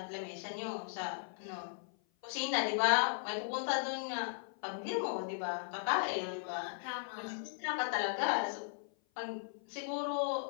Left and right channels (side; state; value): right; silent; 53 dB below the other